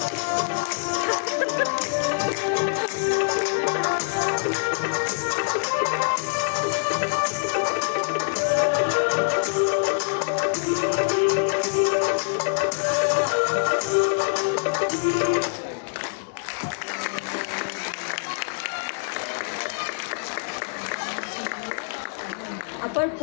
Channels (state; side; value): silent; right; digital silence